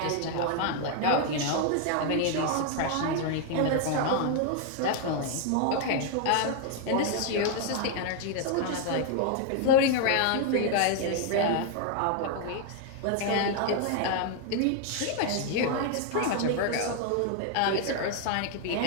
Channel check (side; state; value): both; different; correlation 0.00